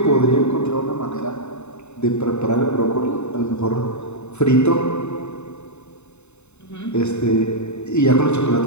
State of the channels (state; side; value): late; right; 0.82 ms